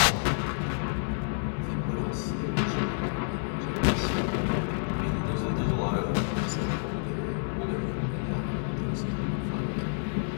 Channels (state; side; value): silent; right; 59 dB below the other